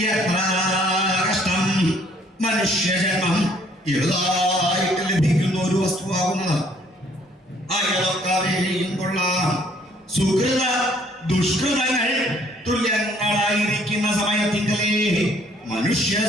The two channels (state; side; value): normal; both; correlation 0.62